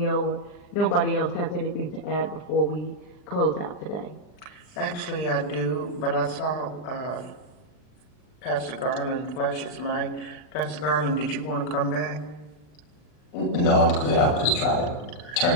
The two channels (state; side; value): late; right; 40 ms